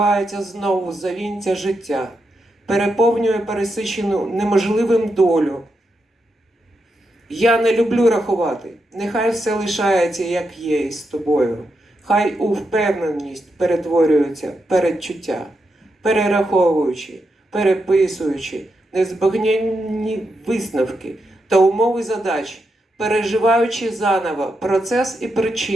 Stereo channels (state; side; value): normal; both; correlation 0.84